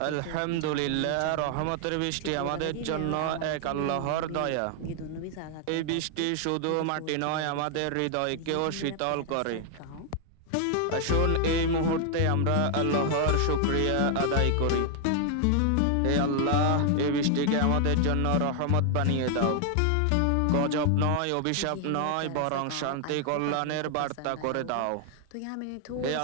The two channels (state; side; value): different; both; correlation 0.00